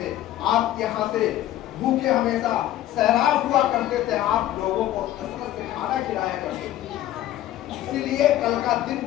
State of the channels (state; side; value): quieter; right; 13.4 dB